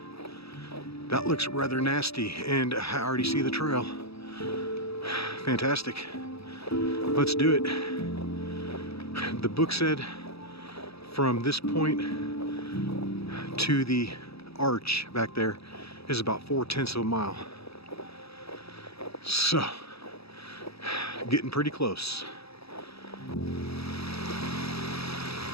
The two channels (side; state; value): right; late; 0.77 ms